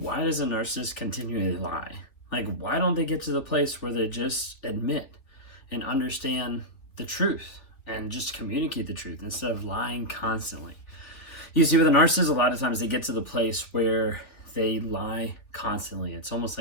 does a narcissist continually lie? Like, why don't they get to the place where they just admit and understand the truth and just communicate the truth instead of lying constantly? You see, with a narcissist, a lot of times they get to the place where they lie constantly. It's almost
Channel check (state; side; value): late; right; 3.2 ms